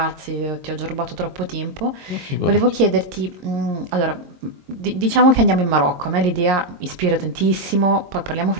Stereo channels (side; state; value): left; late; 22 ms